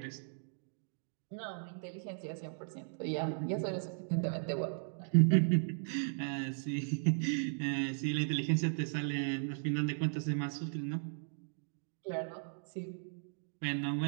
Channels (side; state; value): left; silent; digital silence